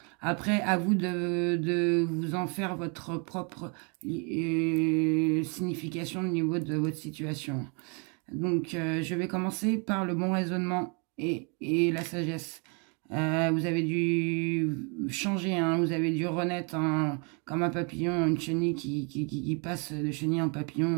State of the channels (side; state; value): left; quieter; 35.3 dB